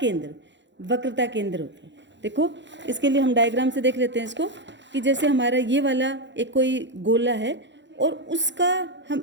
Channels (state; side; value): late; left; 0.53 ms